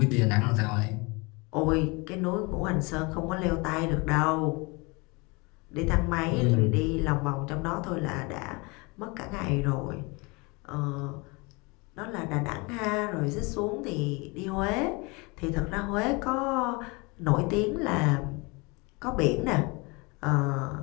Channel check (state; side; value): quieter; right; 27.6 dB